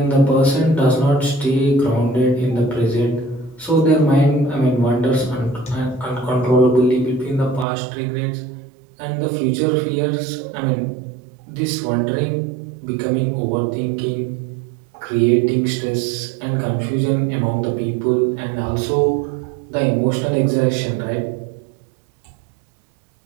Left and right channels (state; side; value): drops out; left; at 7.7 s